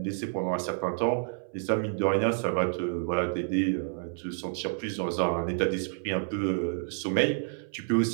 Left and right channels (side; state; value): left; silent; 58 dB below the other